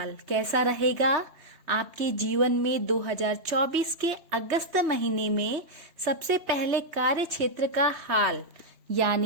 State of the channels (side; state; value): left; late; 3.2 ms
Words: कैसा रहेगा आपके जीवन में 2024 के अगस्त महीने में? सबसे पहले कार्य क्षेत्र का हाल